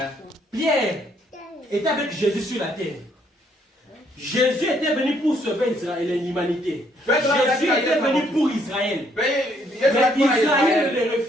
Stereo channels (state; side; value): normal; both; correlation 0.69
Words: Pierre était avec Jésus sur la terre. Jésus était venu pour sauver Israël et l'humanité. Jésus était venu pour Israël. Mais Israël le